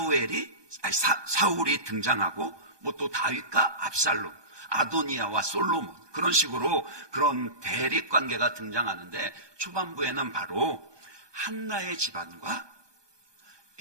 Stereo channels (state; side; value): late; left; 1.2 ms